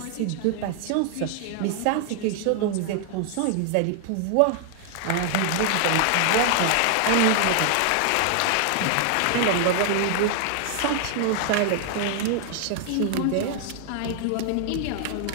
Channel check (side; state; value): both; different; correlation 0.00